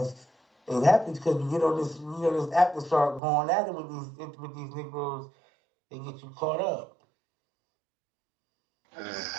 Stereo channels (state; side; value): drops out; left; at 3.2 s